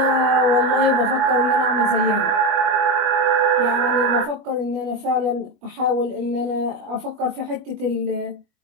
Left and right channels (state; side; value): late; left; 21 ms